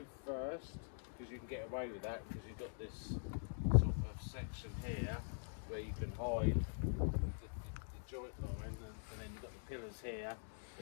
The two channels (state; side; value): silent; right; digital silence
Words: first, because you can get away with that, because you've got this sort of section here where you can hide the joint line, and then you've got the pillars here